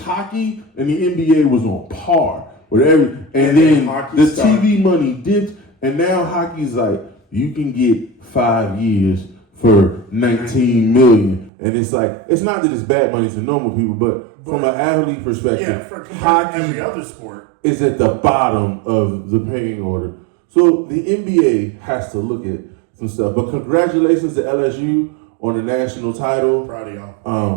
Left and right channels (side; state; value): left; drops out; at 11.5 s